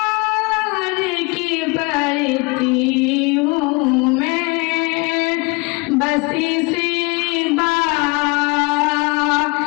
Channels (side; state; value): right; quieter; 27.5 dB